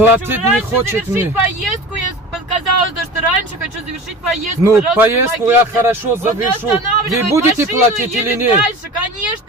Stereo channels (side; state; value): both; normal; correlation 0.36